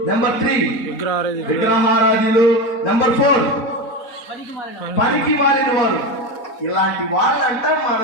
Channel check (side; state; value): right; late; 4.1 ms